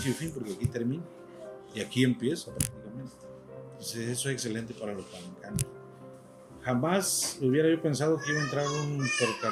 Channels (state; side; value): identical; both; correlation 1.00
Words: y fin, porque aquí termina, y aquí empieza prácticamente. Entonces eso es excelente para los palencanos. Jamás hubiera yo pensado que iba a entrar un